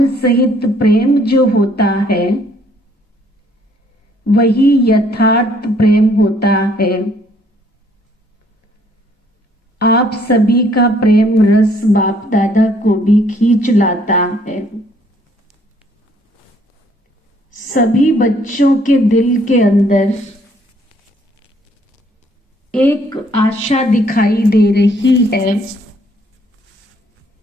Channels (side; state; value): both; normal; correlation 0.64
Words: सहित प्रेम जो होता है वही यथार्थ प्रेम होता है। आप सभी का प्रेम रस बाप दादा को भी खींच लाता है। सभी बच्चों के दिल के अंदर एक आशा दिखाई दे रही है।